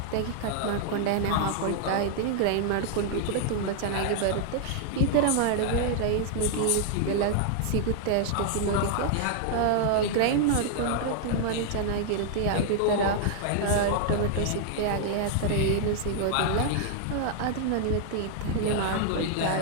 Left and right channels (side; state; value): both; different; correlation -0.01